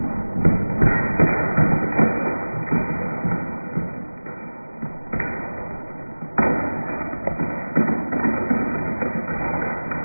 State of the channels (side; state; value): both; inverted; correlation -1.00